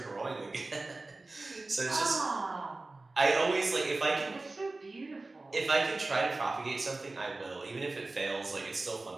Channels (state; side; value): quieter; left; 3.2 dB